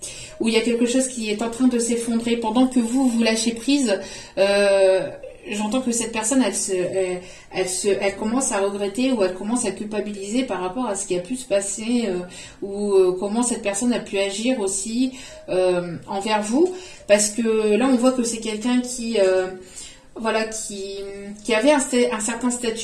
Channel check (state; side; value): identical; both; correlation 1.00